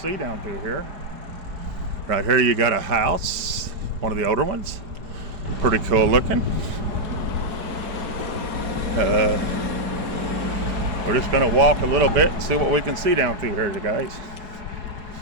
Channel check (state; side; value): late; left; 4.8 ms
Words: down through here. Right here you got a house, one of the older ones. Pretty cool looking. We're just gonna walk a little bit and see what we can see down through here, you guys.